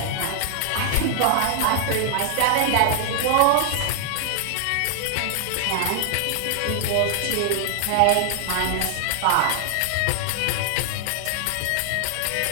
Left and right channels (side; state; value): both; different; correlation -0.01